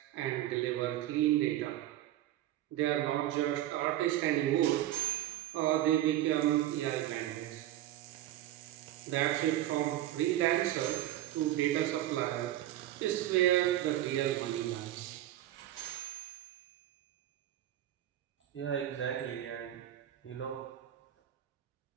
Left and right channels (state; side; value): quieter; left; 13.5 dB